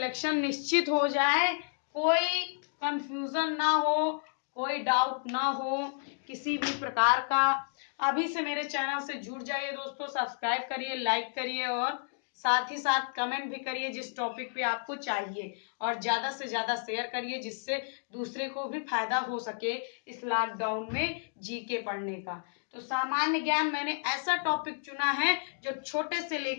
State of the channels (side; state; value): right; silent; digital silence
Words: निश्चित हो जाए, कोई कंफ्यूजन ना हो, कोई डाउट ना हो किसी भी प्रकार का। अभी से मेरे चैनल से जुड़ जाइए दोस्तों, सब्सक्राइब करिए, लाइक करिए और साथ ही साथ कमेंट भी करिए जिस टॉपिक पे आपको चाहिए, और ज्यादा से ज्यादा शेयर करिए जिससे दूसरे को भी फायदा हो सके इस लॉकडाउन में जीके पढ़ने का। तो सामान्य ज्ञान मैंने ऐसा टॉपिक चुना है जो छोटे से